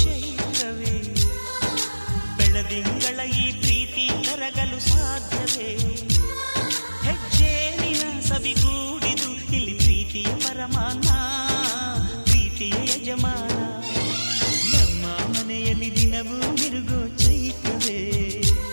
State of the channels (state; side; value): inverted; both; correlation -1.00